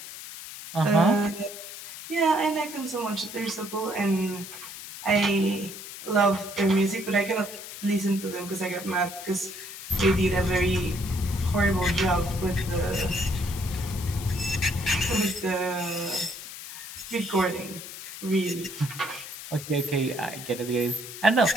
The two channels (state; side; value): noise; left; hiss, 11 dB below the sound